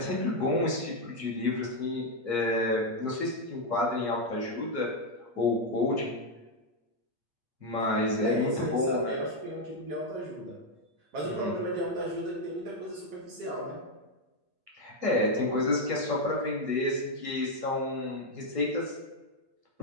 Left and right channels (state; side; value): late; left; 8.5 ms